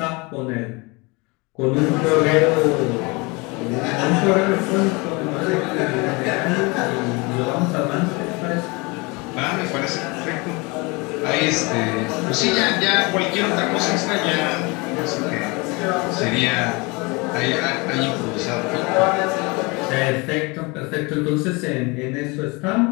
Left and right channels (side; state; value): right; quieter; 27.1 dB